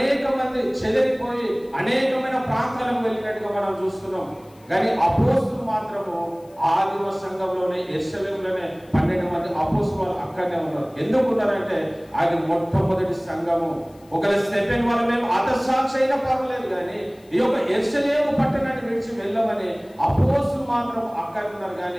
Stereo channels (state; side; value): noise; left; hiss, 30 dB below the sound